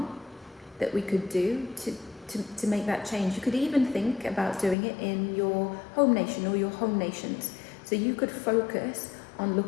that we could do to make that change? You could even think about doing it in your home nation or your home nations. So you could focus on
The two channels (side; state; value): right; drops out; at 4.8 s